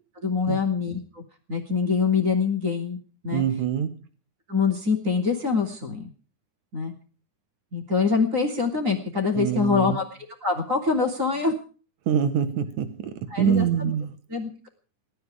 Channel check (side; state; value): left; late; 9.7 ms